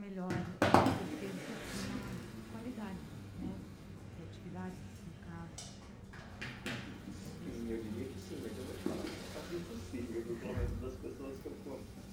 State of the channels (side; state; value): both; identical; correlation 1.00